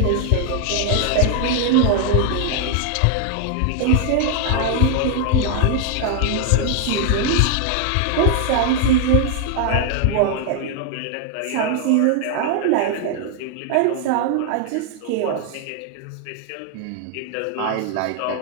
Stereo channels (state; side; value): different; both; correlation 0.00